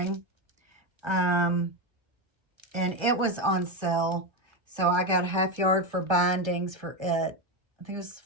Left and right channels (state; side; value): late; left; 1.3 ms